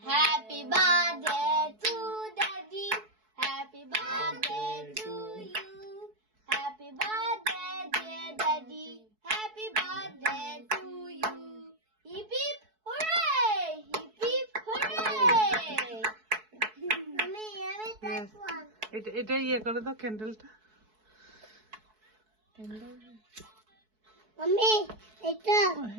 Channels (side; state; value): left; late; 4.6 ms